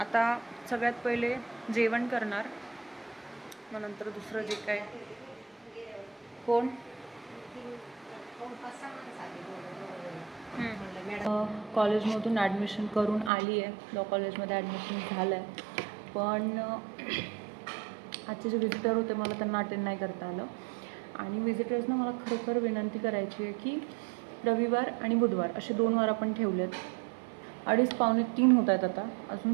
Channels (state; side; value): drops out; left; at 13.3 s